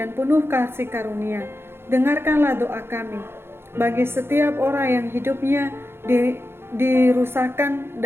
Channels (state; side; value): late; left; 0.11 ms